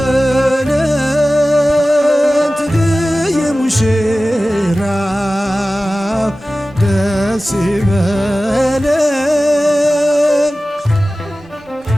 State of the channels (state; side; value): normal; both; correlation 0.96